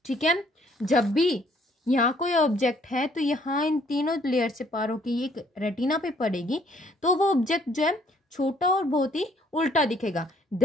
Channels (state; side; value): normal; both; correlation 0.63